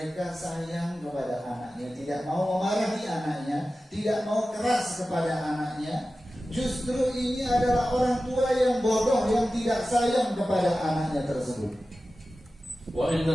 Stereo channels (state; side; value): normal; both; correlation 0.94